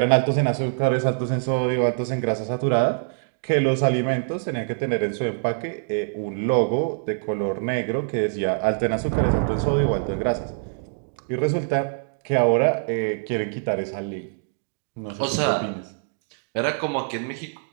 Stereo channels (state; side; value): silent; left; digital silence